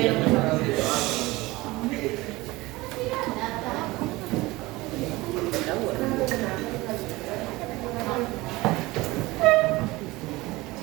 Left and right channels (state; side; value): quieter; left; 20.7 dB